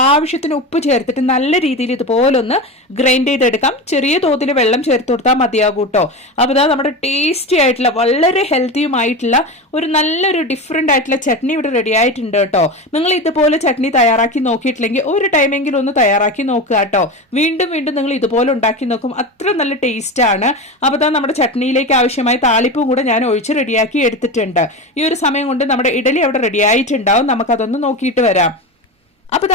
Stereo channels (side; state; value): both; normal; correlation 0.23